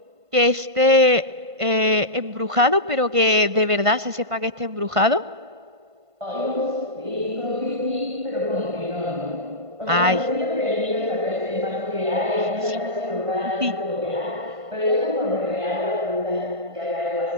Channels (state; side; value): late; left; 1.5 ms